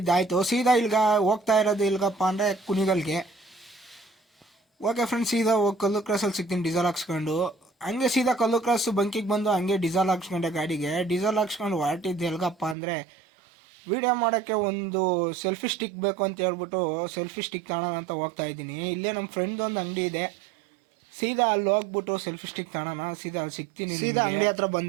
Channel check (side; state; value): left; drops out; at 12.8 s